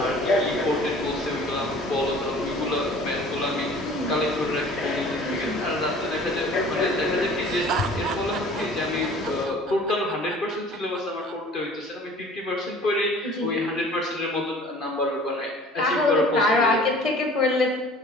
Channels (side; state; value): both; normal; correlation 0.48